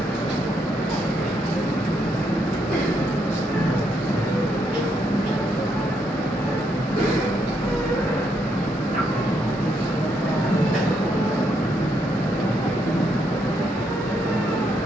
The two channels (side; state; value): both; normal; correlation 0.76